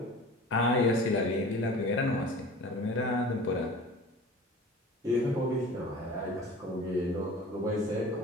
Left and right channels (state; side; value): normal; both; correlation 0.40